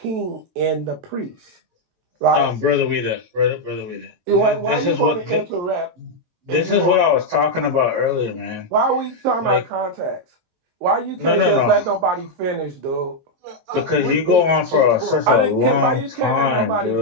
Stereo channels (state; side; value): late; left; 22 ms